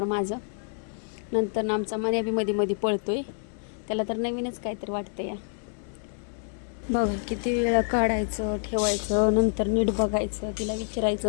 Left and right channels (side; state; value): right; silent; 57 dB below the other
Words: माझं. नंतर आमचा मन्या बी मध्ये पळतोय, त्याला तर नवीनच काहीतरी वाटतं या. बघा किती वेळा काढायचं ठेवायचं, नंतर नीट बघायचं, तिला